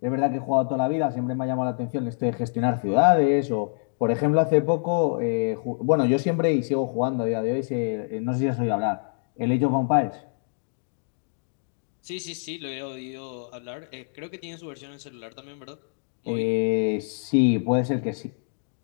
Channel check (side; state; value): right; silent; digital silence